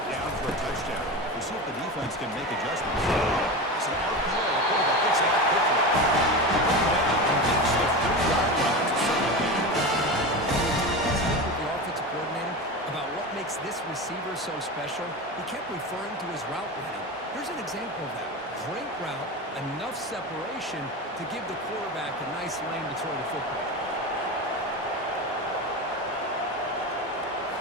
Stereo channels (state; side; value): normal; both; correlation 0.24